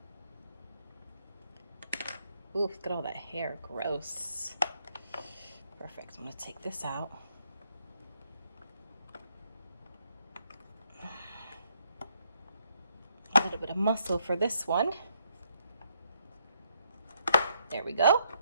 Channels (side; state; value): both; inverted; correlation -0.74